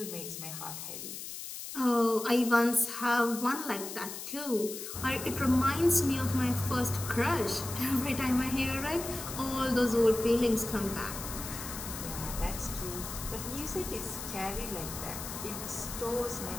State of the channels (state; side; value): noise; left; hiss, 8 dB below the sound